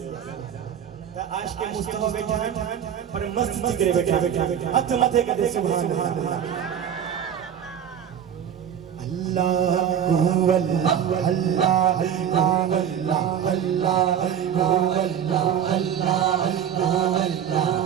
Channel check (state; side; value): quieter; left; 9.0 dB